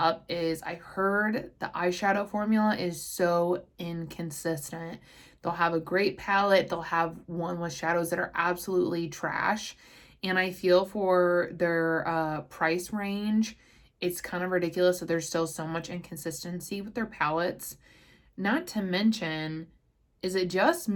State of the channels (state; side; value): identical; both; correlation 1.00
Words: is I heard the eyeshadow formula is so inconsistent. They'll have a great palette. They'll have one with shadows that are absolutely trash. And I feel for their price range, it's kind of ridiculous that there's still so much inconsistency with their palettes. Not to mention, is it just